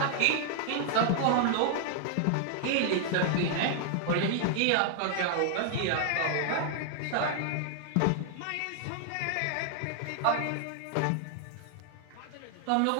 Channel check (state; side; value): different; both; correlation 0.00